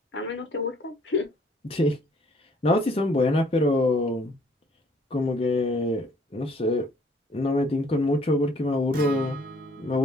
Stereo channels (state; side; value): normal; both; correlation 0.60